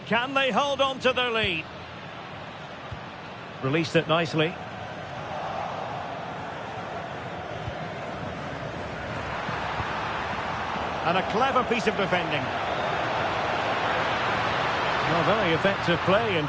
Can they hold on to their lead? Released it nicely. And a clever piece of defending. Well, very effective play in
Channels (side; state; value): both; identical; correlation 1.00